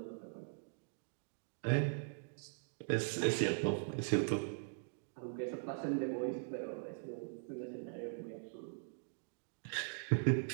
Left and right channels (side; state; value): left; silent; digital silence